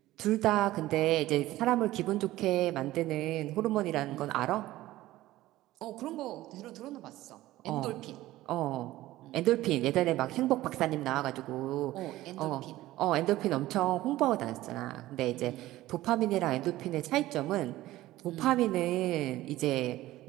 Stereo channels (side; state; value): left; quieter; 16.2 dB